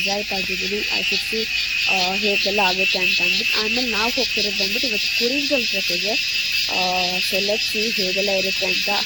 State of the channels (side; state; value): right; noise; rumble, 21 dB below the sound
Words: ಆಗಿದ್ದೀನಿ. ಐ ಸಿಕ್ಸಿ ಹೇಗೆಲ್ಲ ಆಗುತ್ತೆ ಅಂತ ಅಂದ್ಬಿಟ್ಟು. ಆಮೇಲೆ ನಾವು ಹೋಗ್ತಿರೋದು ಬಂದ್ಬಿಟ್ಟು ಇವತ್ತು ಕುರಿಂಜಲ್ ಟ್ರೆಕ್ಕಿಗೆ. ಸೊ ಲೆಟ್ಸ್ ಸಿ ಹೇಗೆಲ್ಲ ಇರುತ್ತೆ ಅಂತ.